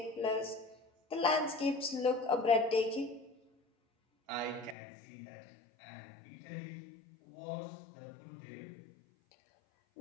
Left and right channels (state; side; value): drops out; right; at 4.8 s